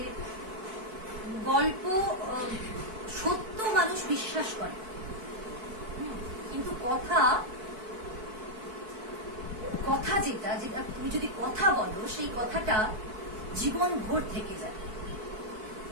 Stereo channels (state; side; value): late; left; 4.6 ms